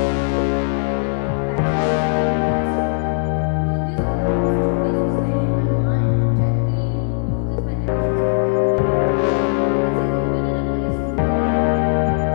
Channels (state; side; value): silent; right; 58 dB below the other